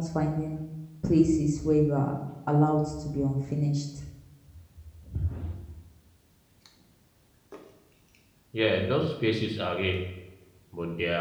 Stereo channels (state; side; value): identical; both; correlation 1.00